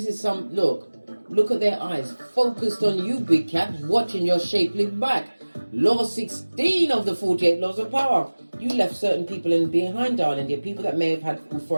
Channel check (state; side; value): inverted; both; correlation -1.00